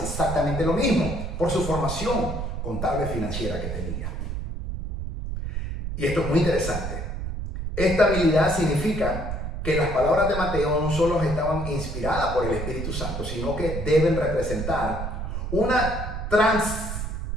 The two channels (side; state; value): right; noise; rumble, 5 dB below the sound